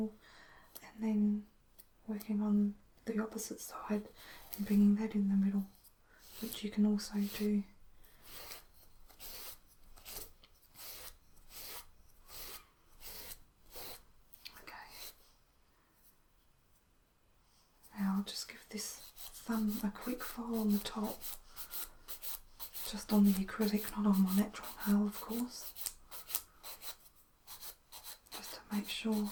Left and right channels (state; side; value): identical; both; correlation 1.00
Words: and then working on the opposite side and bringing that in the middle, which you can also do. Okay. Now I'll just give this thumb a quick file on the top, just on the acrylic, not on my natural nail of course, just to make sure